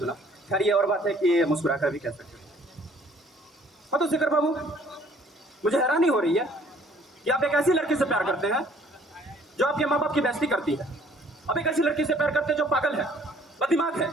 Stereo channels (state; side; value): normal; both; correlation 0.58